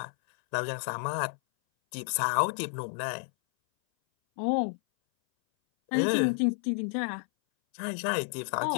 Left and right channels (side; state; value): right; silent; 58 dB below the other